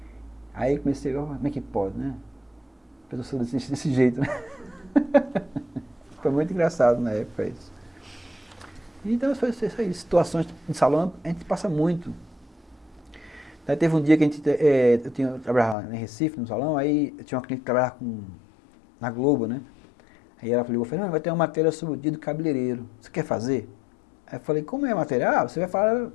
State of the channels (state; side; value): drops out; right; at 15.8 s